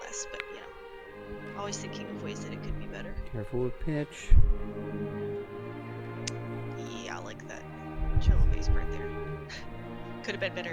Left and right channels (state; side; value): identical; both; correlation 1.00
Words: but you know, always thinking of ways that it could be better. Careful with pitch. Yeah, I like that cello bass part there. Could have been